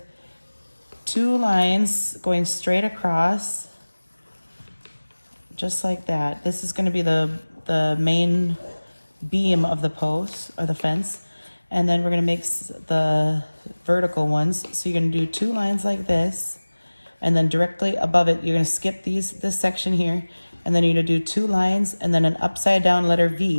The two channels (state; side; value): inverted; both; correlation -1.00